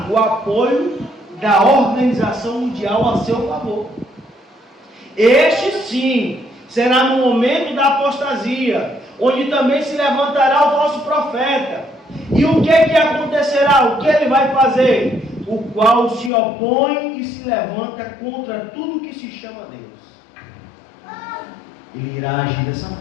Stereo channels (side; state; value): right; drops out; at 16.3 s